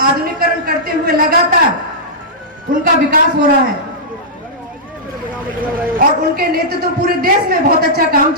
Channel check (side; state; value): both; normal; correlation -0.13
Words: आधुनिकीकरण करते हुए लगातार उनका विकास हो रहा है और उनके नेतृत्व पूरे देश में बहुत अच्छा काम